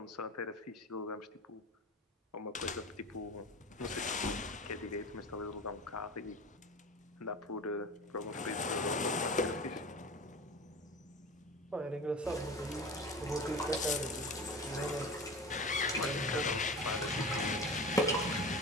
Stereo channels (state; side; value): normal; both; correlation 0.33